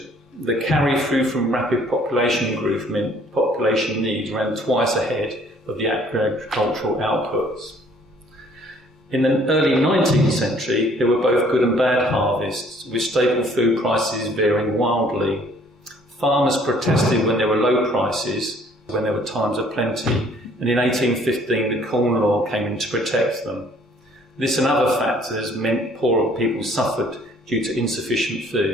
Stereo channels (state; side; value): normal; both; correlation 0.59